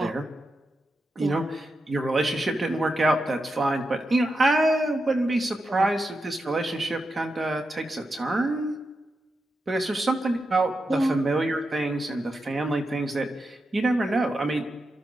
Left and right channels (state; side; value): normal; both; correlation 0.88